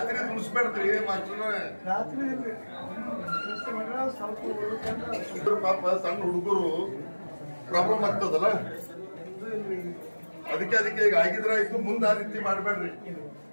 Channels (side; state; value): both; inverted; correlation -1.00